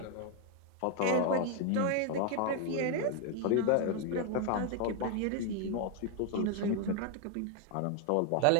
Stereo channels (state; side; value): different; both; correlation 0.01